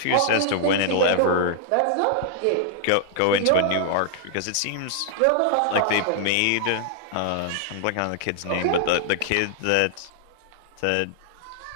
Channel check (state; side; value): different; both; correlation 0.00